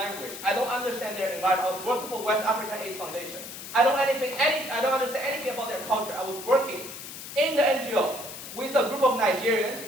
I don't understand their environment. I was working for West African AIDS Foundation. I don't understand anything about their culture. I was working in the NGO with a group of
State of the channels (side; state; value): left; noise; hiss, 11 dB below the sound